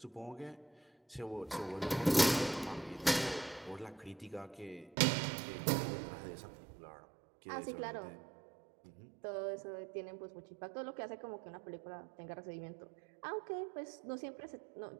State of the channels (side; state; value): left; drops out; at 5.0 s